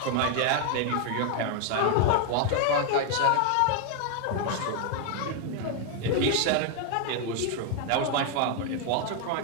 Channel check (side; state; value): both; different; correlation 0.00